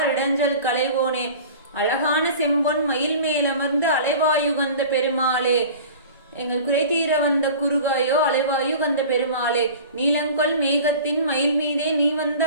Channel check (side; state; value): both; inverted; correlation -0.40